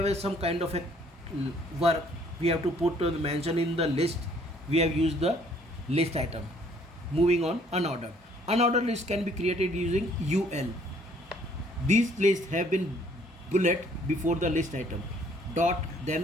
some kind of a work, we have to put mention in the list. We have used the list item. Moving on, unordered list can be created using UL. These lists have been bullet before the list item, dot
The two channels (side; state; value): both; normal; correlation 0.61